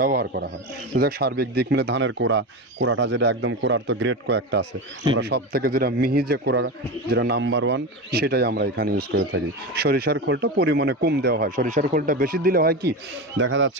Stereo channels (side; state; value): both; normal; correlation 0.21